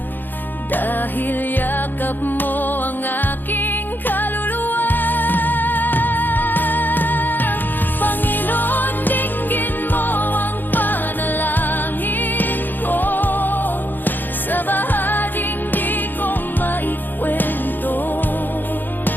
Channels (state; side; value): late; right; 0.090 ms